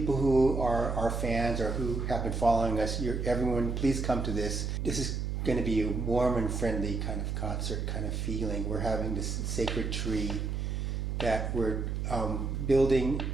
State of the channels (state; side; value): noise; right; hum, 2 dB below the sound